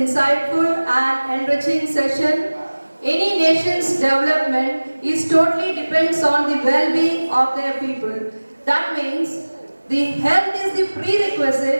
and enriching session. Any nation's development is totally depends on the well-being of their people. That means the health is the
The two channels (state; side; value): inverted; both; correlation -1.00